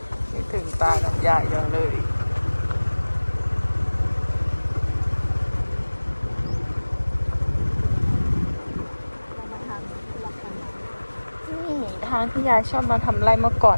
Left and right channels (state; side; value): inverted; both; correlation -1.00